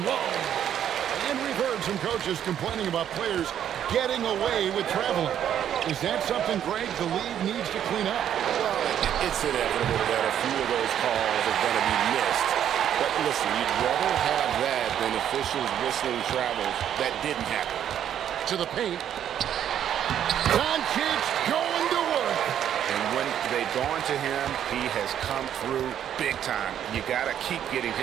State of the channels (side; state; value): left; quieter; 9.9 dB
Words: low. And reverts some coaches complaining about players getting away with traveling. Is that something, Greg, the league needs to clean up? Well, it's inevitable that a few of those calls are going to be missed. But listen, you'd rather have that than officials whistling travels that didn't happen. To the paint. Dončić going to work. And when they've gone to him, he has come through big time. You got to keep getting